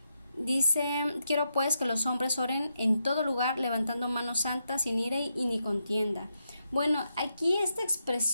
Dice, quiero pues que los hombres oren en todo lugar, levantando manos santas, sin ira y ni contienda. Bueno, aquí esta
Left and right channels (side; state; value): both; inverted; correlation -0.84